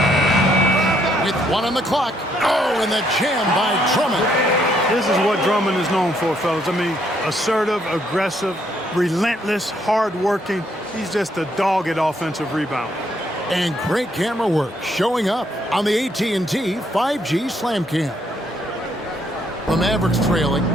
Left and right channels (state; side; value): normal; both; correlation 0.71